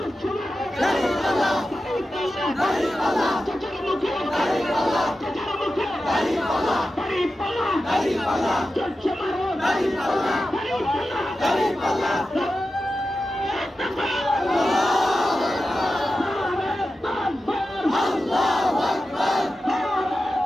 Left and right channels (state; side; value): normal; both; correlation 0.92